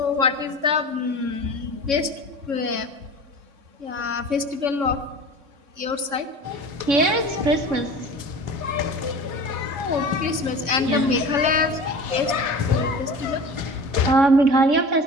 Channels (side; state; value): left; late; 3.6 ms